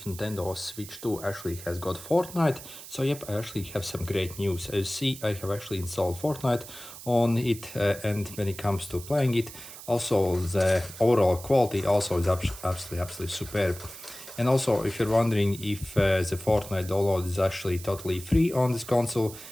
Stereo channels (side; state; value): right; noise; hiss, 14 dB below the sound